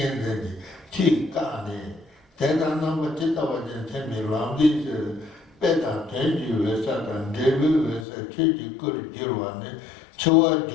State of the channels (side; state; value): right; drops out; at 8.1 s